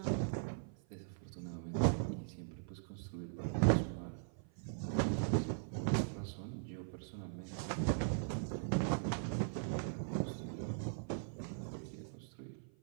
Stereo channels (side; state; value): left; silent; 51 dB below the other